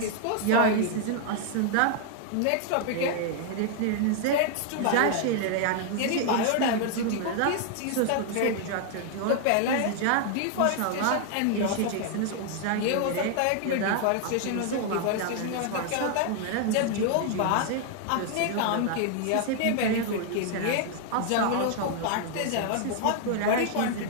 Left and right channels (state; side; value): different; both; correlation 0.00